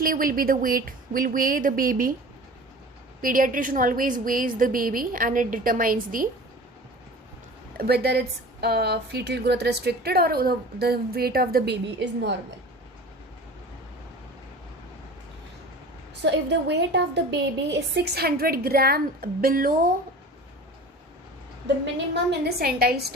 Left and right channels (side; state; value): both; normal; correlation 0.39